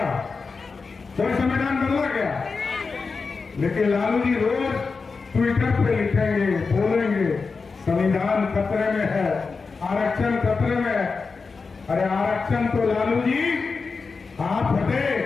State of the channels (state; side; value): quieter; right; 4.6 dB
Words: कोई संविधान बदला क्या? लेकिन लालू जी रोज ट्विटर पे लिखेंगे, बोलेंगे संविधान खतरे में है, आरक्षण खतरे में है। अरे आरक्षण तो लालू जी आप हटे,